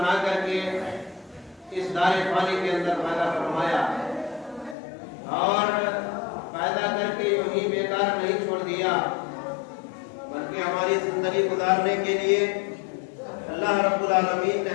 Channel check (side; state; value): right; drops out; at 4.8 s